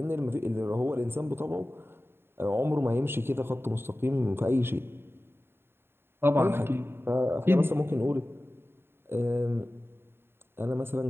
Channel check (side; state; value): left; late; 0.11 ms